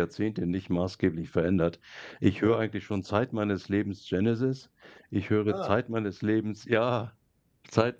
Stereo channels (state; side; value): identical; both; correlation 1.00